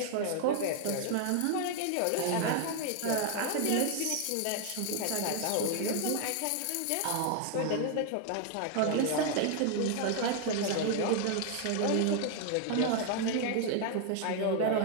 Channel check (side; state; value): both; different; correlation 0.00